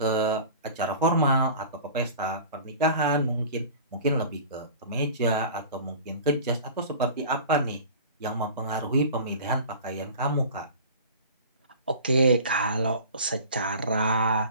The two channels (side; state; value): both; inverted; correlation -0.40